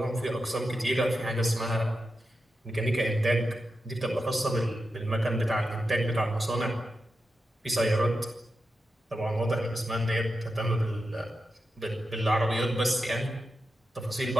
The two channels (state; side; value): normal; both; correlation 0.89